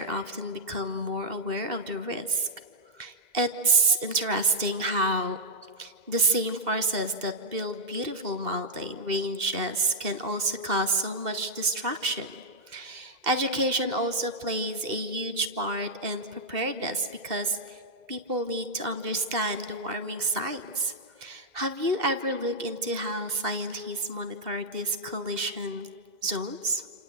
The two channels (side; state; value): left; late; 2.0 ms